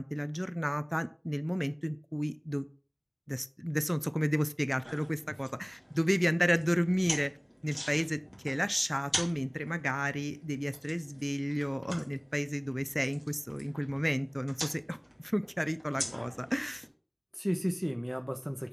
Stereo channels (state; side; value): identical; both; correlation 1.00